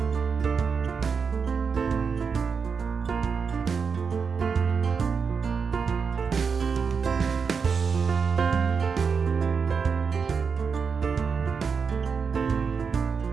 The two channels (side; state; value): left; quieter; 5.8 dB